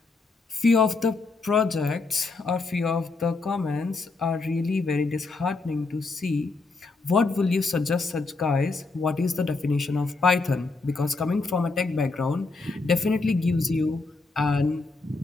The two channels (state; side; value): quieter; right; 3.7 dB